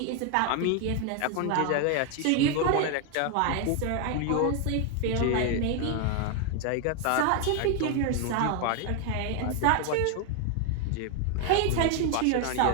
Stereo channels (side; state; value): both; different; correlation 0.01